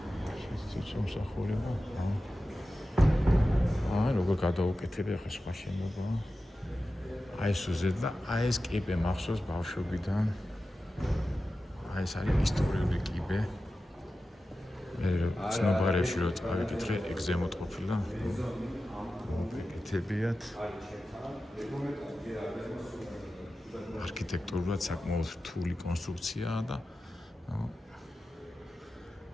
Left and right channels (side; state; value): both; normal; correlation 0.93